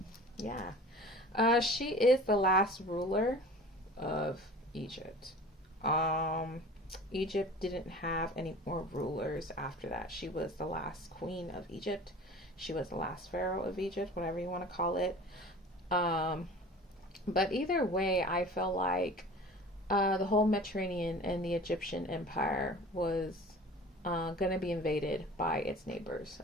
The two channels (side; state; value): both; normal; correlation 0.40